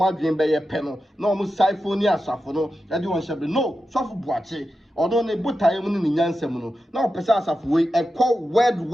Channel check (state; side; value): normal; both; correlation 0.90